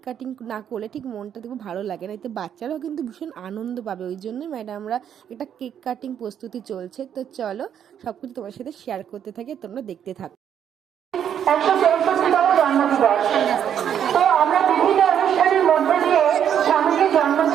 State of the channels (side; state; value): left; quieter; 9.1 dB